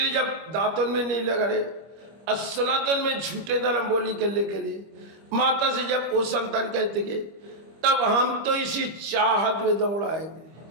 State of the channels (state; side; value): late; left; 25 ms